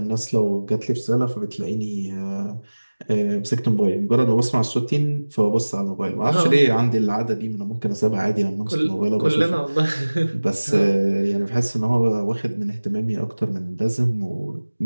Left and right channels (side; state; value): both; inverted; correlation -1.00